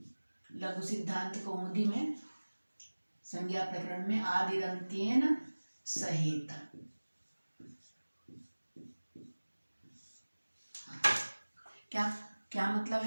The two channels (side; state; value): both; inverted; correlation -1.00